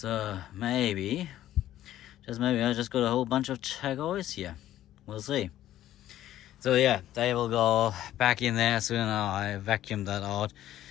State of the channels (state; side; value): quieter; right; 13.1 dB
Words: maybe, just maybe, I just got a whole bunch of chagois here. We'll see. So yeah, they will go back in there soon. I vacuumed that out